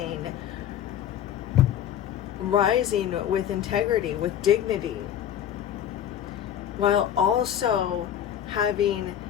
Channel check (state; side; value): quieter; right; 10.2 dB